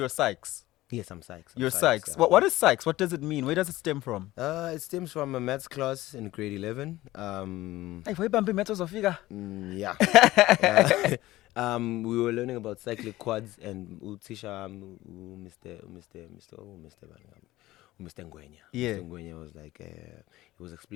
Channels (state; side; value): quieter; right; 17.0 dB